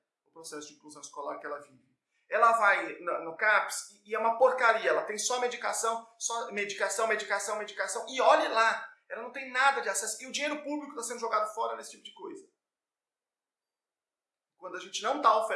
o processo de inclusão escolar que ela vive. Ela vai no CAPS e é uma porcaria, ela tem só medicação, e olhe lá, ela não tem nada de acesso. E o dinheiro público está sendo jogado fora nesse tipo de coisa. Quando a gente não está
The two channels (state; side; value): identical; both; correlation 1.00